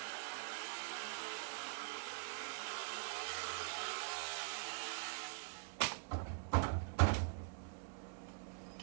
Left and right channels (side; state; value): left; silent; digital silence